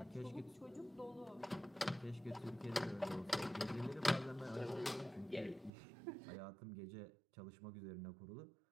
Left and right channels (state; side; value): drops out; left; at 5.7 s